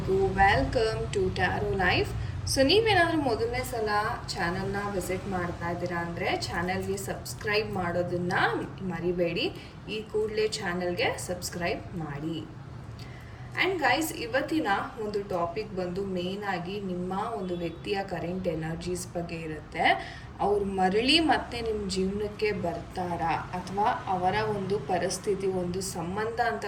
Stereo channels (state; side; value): identical; both; correlation 1.00